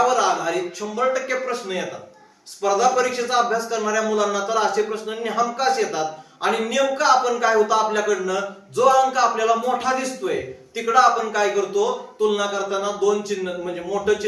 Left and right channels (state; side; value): identical; both; correlation 1.00